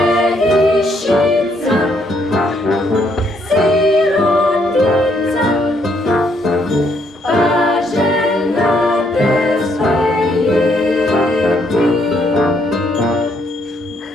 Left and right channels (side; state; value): both; normal; correlation 0.71